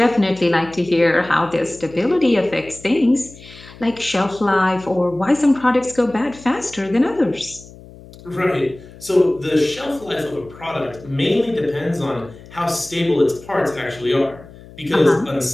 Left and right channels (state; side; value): noise; left; hum, 20 dB below the sound